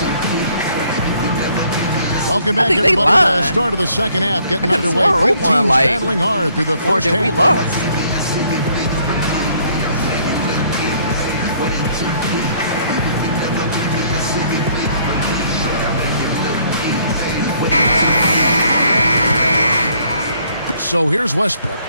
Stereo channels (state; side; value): inverted; both; correlation -0.64